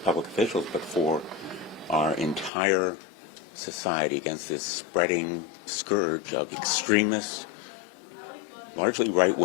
officials, but for our entire society against this spreading scourge of extremist, largely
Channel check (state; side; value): drops out; right; at 2.5 s